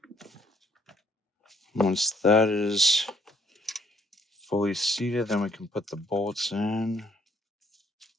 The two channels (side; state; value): both; normal; correlation 0.65